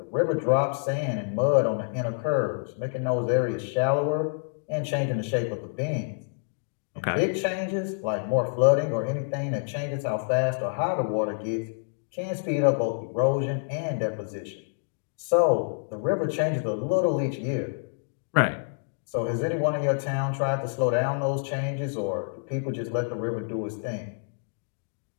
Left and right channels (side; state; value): right; silent; digital silence